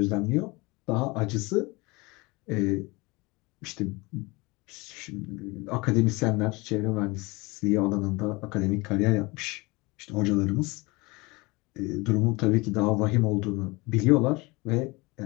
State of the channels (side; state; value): right; quieter; 24.7 dB